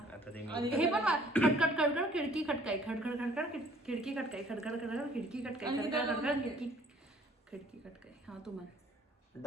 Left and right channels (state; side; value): normal; both; correlation 0.57